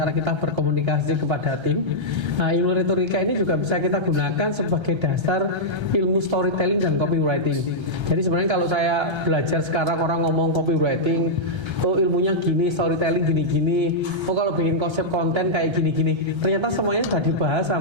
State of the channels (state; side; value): late; left; 1.3 ms